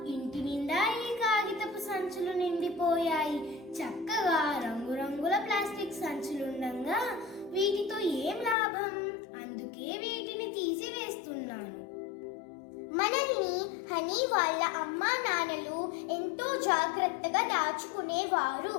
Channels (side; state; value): right; drops out; at 8.6 s